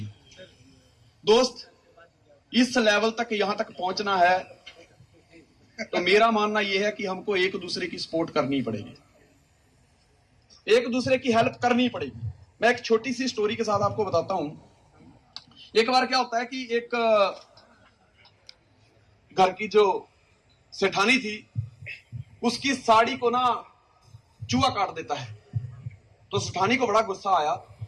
दोस्त, इस लेवल तक यहां तक पहुंचना है तो मेरा मानना यह है कि हमको एक दूसरे की सपोर्ट करनी पड़ेगी, एक दूसरे की हेल्प करनी पड़ेगी। मैं एक छोटी सी स्टोरी के साथ आपको बताता हूं। एक बार क्या होता है कि एक घर की जो सेठानी थी उसकी साड़ी को ना चूहा काट देता है। तो सेठानी को बड़ा गुस्सा आया।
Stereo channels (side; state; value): both; identical; correlation 1.00